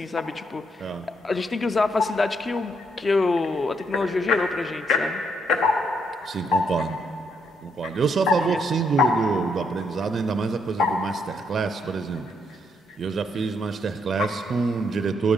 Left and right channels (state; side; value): normal; both; correlation 0.75